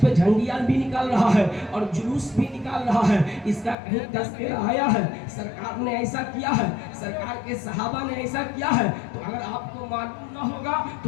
झंडियां भी निकाल रहा है और जुलूस भी निकाल रहा है, इसका कहीं तज़किरा आया है? सरकार ने ऐसा किया है, सरकार के सहाबा ने ऐसा किया है? तो अगर आपको मालूम ना होगा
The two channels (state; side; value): drops out; right; at 3.8 s